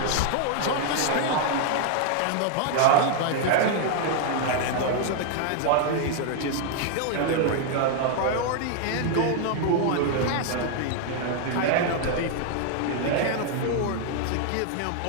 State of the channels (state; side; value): different; both; correlation 0.00